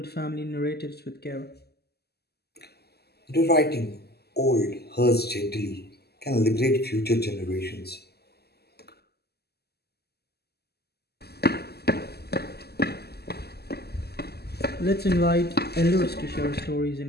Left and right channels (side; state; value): right; late; 0.47 ms